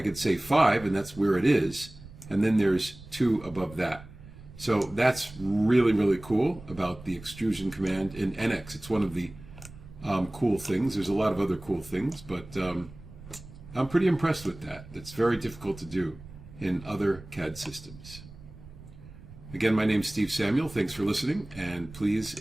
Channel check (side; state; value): right; noise; rumble, 18 dB below the sound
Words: say 5, and that's where it is, and then there's 2 above that. So that's really, really cool about the extrusion command in NX. It's one of the cool things. There's a lot of other cool things, but I'm pretty impressed with that. It's very difficult to do in other CAD systems. Again, my name's Steve Samuel. Thanks for listening, and please,